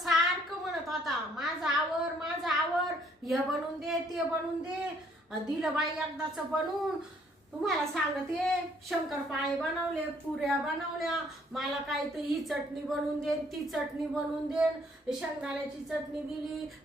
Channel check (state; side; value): normal; both; correlation 0.64